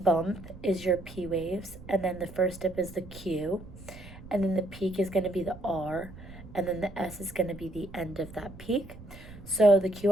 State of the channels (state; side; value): noise; right; rumble, 16 dB below the sound